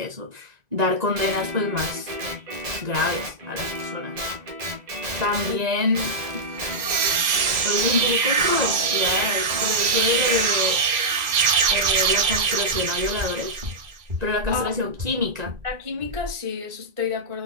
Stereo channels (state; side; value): late; left; 1.9 ms